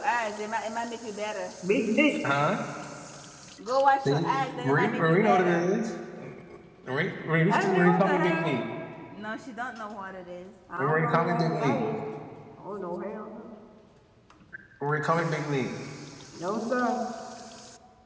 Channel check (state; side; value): identical; both; correlation 1.00